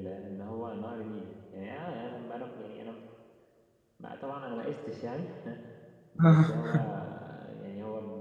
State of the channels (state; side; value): identical; both; correlation 1.00